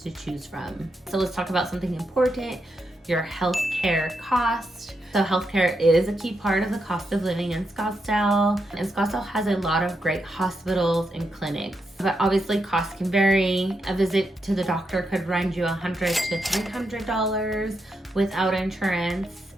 to choose from. So let's talk about something important, your healthcare cost. So healthcare is a key part of the cost of living in Scottsdale. And Scottsdale has a lot of great hospitals and clinics. But obviously costs can vary. A visit to the doctor could run you $100 to $300 without insurance.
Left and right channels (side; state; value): both; normal; correlation 0.83